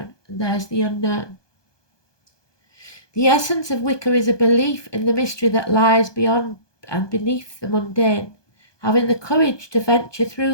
and there's the unknown. The essence of Wicca is a belief in the mystery that lies beyond and beneath the mundane. Having the courage to venture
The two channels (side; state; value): right; late; 1.2 ms